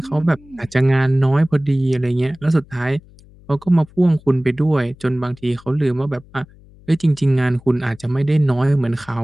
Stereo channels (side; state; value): left; noise; hum, 25 dB below the sound